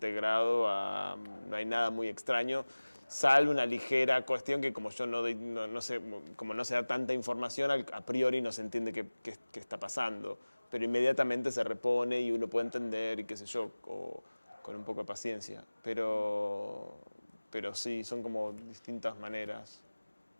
no hay nada muy extraño, salvo una ligera cuestión que como yo no sé, como no se da tanta información, a priori no se entiende qué está pasando, pero inmediatamente se repone y uno puede entender y qué sé yo, con un poco de paciencia. Pero sí, son como distintas maneras.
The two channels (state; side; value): inverted; both; correlation -1.00